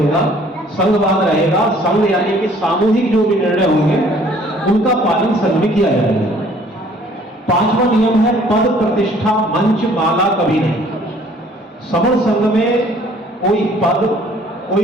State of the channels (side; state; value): both; normal; correlation 0.57